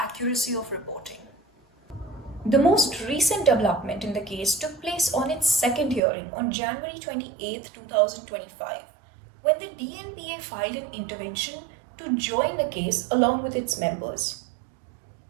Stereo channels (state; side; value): drops out; left; at 6.0 s